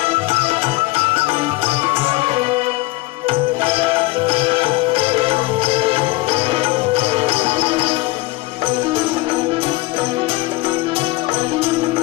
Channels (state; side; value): quieter; right; 20.6 dB